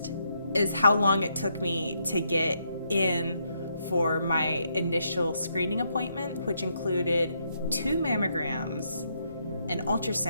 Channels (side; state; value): both; inverted; correlation -0.77